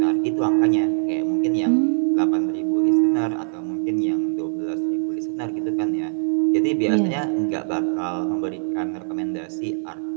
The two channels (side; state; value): left; silent; digital silence